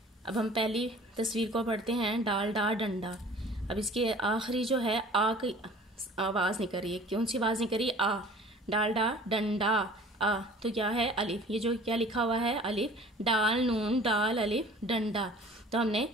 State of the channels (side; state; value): both; normal; correlation 0.47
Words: अब हम पहली तस्वीर को पढ़ते हैं, डाल डा डंडा। अब इसके आखिरी जो है आ की आवाज़ निकल रही है। कौन सी आवाज़ निकल रही है? आ। डाल डा डंडा आ, तो क्या है? अलिफ। ये जो क्या लिखा हुआ है? अलिफ। डाल नून डाल अलिफ डंडा, तो हमने